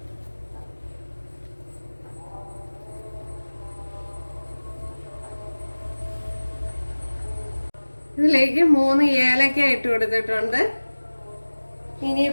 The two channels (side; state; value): both; inverted; correlation -1.00